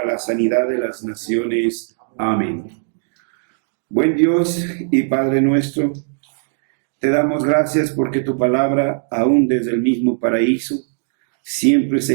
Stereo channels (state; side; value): silent; left; digital silence